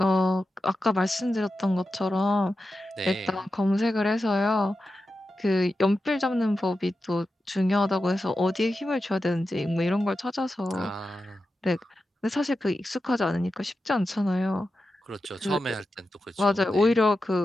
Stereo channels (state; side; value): normal; both; correlation 0.91